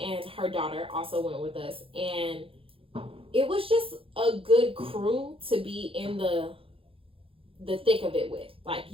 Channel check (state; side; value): late; left; 0.27 ms